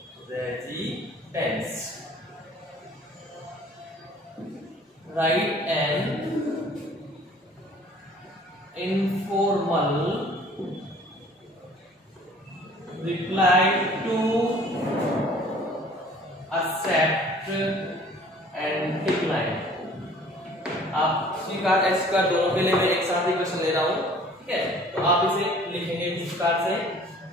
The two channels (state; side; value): normal; both; correlation 0.52